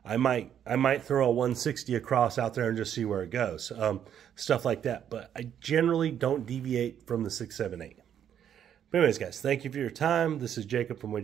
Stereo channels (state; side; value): quieter; left; 9.4 dB